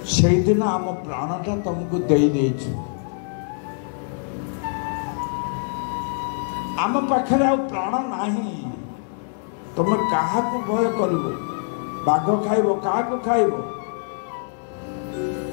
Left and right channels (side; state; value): right; silent; 63 dB below the other